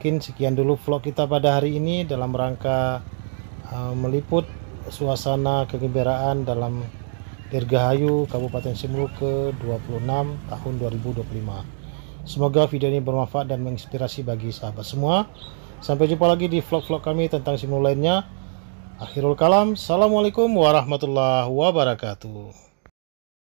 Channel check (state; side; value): silent; left; 63 dB below the other